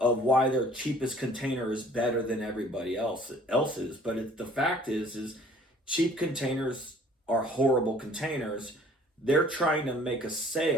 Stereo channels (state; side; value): normal; both; correlation 0.54